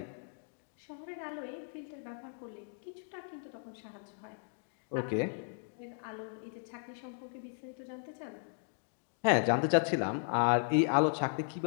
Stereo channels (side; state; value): right; silent; digital silence